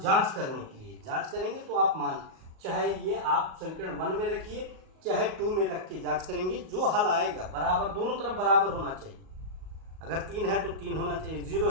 करने के लिए जांच करेंगे तो आप मान चाहे ये आप समीकरण 1 में रखिए चाहे 2 में रख के जांच करेंगे, जो हल आएगा बराबर दोनों तरफ बराबर होना चाहिए। अगर 3 है तो 3 होना चाहिए, 0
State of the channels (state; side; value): late; left; 38 ms